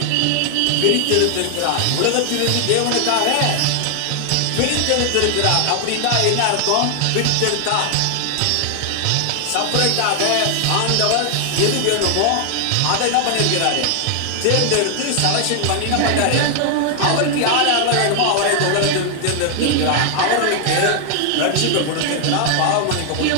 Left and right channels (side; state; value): both; different; correlation 0.00